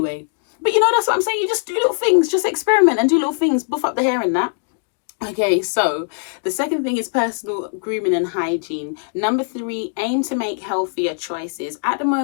But you know, that's what I'm saying. You just do little things, just experiment and do little things, buff up the hair and that. Okay, so the second thing is personal grooming and hygiene. Number 3, aim to make healthier choices. At the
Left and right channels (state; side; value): silent; right; digital silence